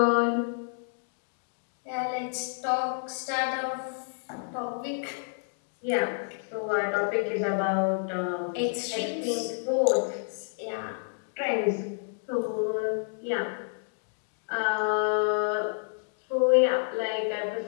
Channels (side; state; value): right; silent; digital silence